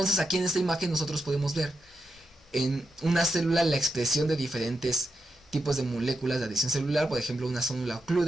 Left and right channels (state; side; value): normal; both; correlation 0.86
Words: aquí en esta imagen nosotros podemos ver en una célula la expresión de diferentes tipos de moléculas de adhesión celular, por ejemplo una célula